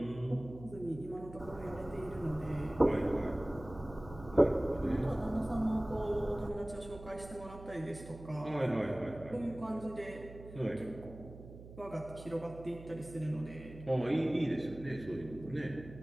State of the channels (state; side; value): noise; right; hum, 15 dB below the sound